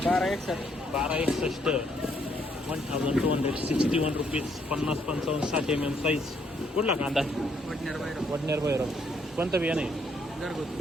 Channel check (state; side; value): normal; both; correlation 0.71